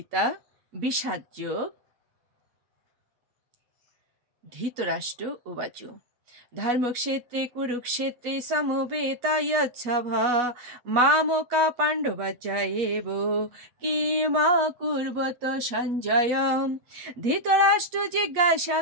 বিষাদ যোগ। ধৃতরাষ্ট্র উবাচ ধর্মক্ষেত্রে কুরুক্ষেত্রে সমবেতায়চ্ছভা মামকা পাণ্ডবাচায়েব কিমাকুর্বত সঞ্জয়। ধৃতরাষ্ট্র জিজ্ঞাসা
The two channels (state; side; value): late; left; 8.2 ms